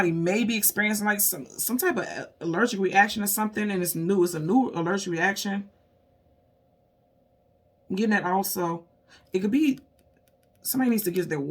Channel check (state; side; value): identical; both; correlation 1.00